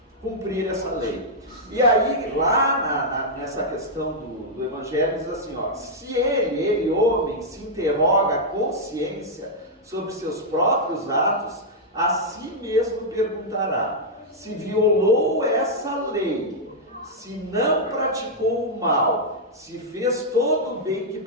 cumprir essa lei. E aí, lá nessa questão do Evangelho, diz assim, ó, se ele, homem, se interroga a consciência sobre seus próprios atos, a si mesmo perguntará, se violou essa lei, se não praticou o mal se fez todo o bem que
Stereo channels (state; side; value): normal; both; correlation -0.05